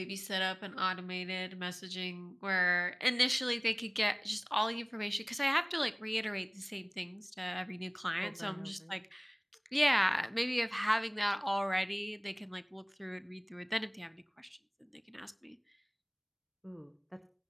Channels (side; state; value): both; identical; correlation 1.00